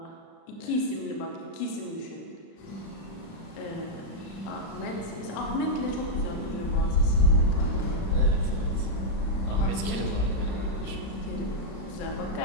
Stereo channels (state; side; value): late; right; 35 ms